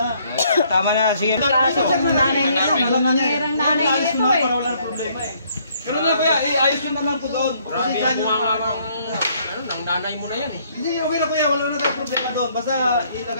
Tama na. Sige. Kaso sa nanay nito. Nangyayarang nanay Ayos nito mo na eh. para wala nang problema eh. Pero na kuya, ayos nyo na lang po doon. Grabe Pasensyahan yung nyo mga na. ng nanay mo na yan eh. Hindi, okay na kuya, wala na tayong problema doon. Basta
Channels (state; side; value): inverted; both; correlation -0.66